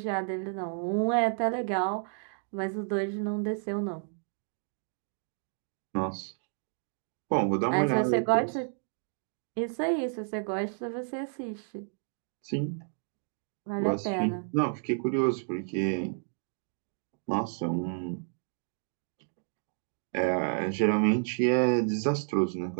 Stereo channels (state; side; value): silent; left; 57 dB below the other